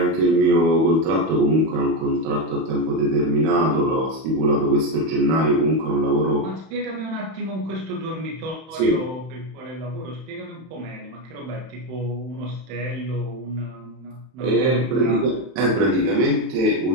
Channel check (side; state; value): left; late; 31 ms